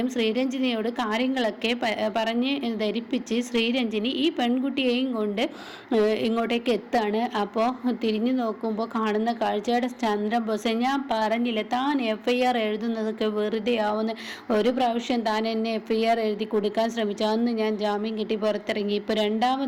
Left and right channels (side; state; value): both; identical; correlation 1.00